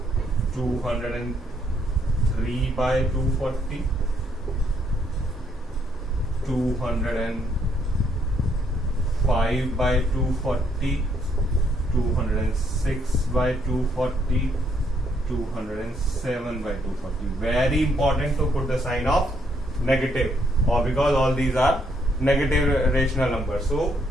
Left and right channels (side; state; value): both; normal; correlation 0.72